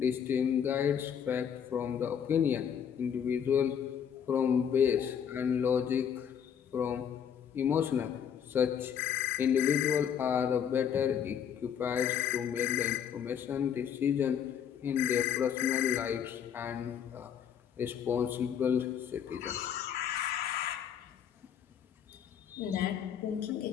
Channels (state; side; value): quieter; right; 8.3 dB